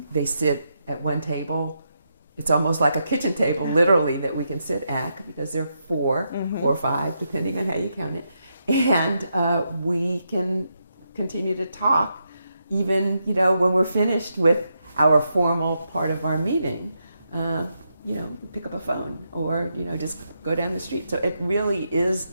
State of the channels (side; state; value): both; inverted; correlation -0.82